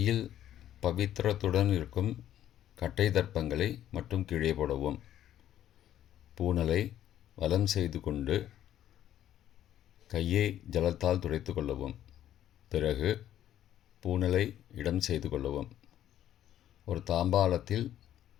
பவித்திரத்துடன் இருக்கும் கட்டை தர்ப்பங்களை மட்டும் கீழே போடவும். பூனலை வலம் செய்து கொண்டு கையை ஜலத்தால் துடைத்து கொள்ளவும். பிறகு பூனலை இடம் செய்து கொள்ளவும். ஒரு தாம்பாளத்தில்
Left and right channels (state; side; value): quieter; right; 11.7 dB